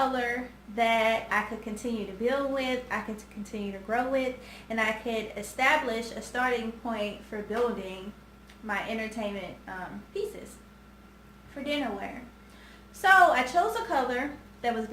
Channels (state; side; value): identical; both; correlation 1.00